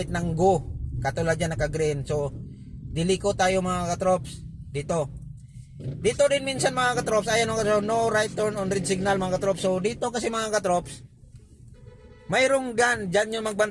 ng go. Katulad yan naka-green. So, diliko tayo mga trop dito. Dito din minsan mga trop, ayan mga trop, no right turn on red signal mga trop. So, dito kasi mga trop, mayroong dyan yung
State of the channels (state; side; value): identical; both; correlation 1.00